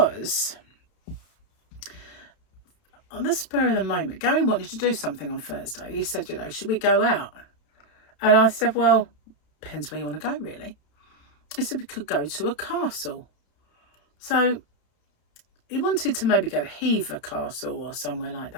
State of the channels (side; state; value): right; late; 31 ms